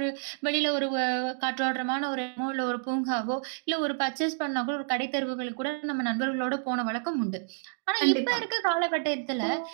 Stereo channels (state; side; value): silent; left; digital silence